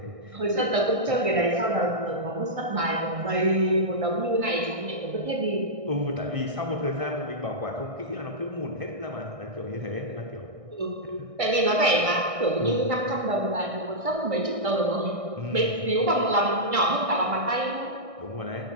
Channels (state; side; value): late; left; 1.6 ms